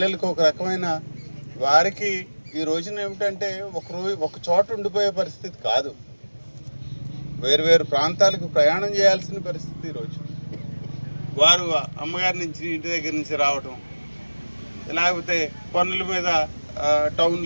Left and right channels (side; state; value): both; inverted; correlation -1.00